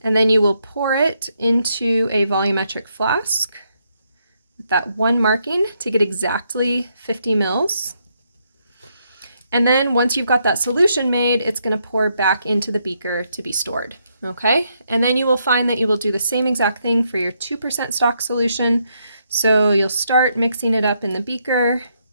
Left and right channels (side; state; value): both; inverted; correlation -0.76